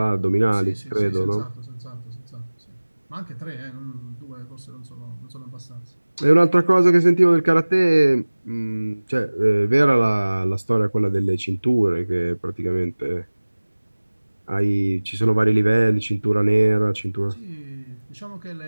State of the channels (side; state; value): both; inverted; correlation -1.00